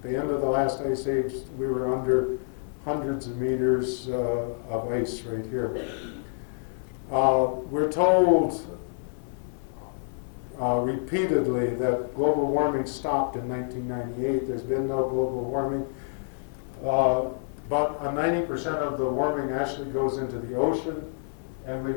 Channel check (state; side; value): silent; right; digital silence